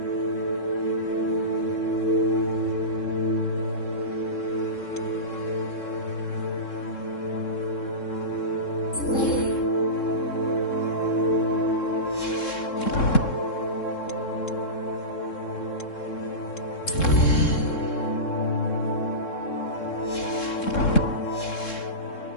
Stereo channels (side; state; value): right; late; 3.7 ms